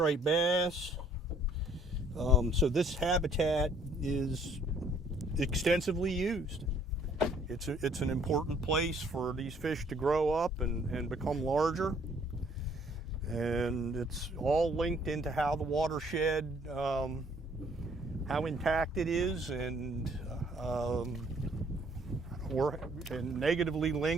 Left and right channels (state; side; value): normal; both; correlation 0.61